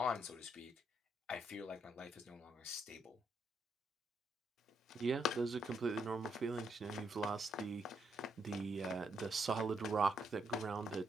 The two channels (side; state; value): both; normal; correlation 0.76